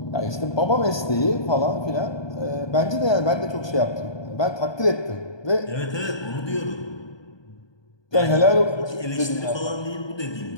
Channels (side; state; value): right; late; 1.2 ms